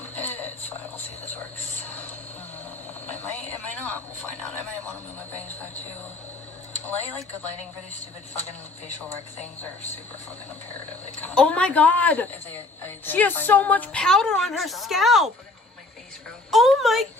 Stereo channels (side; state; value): right; quieter; 3.0 dB